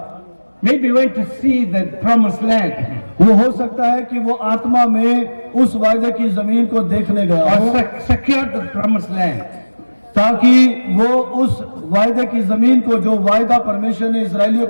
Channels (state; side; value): inverted; both; correlation -1.00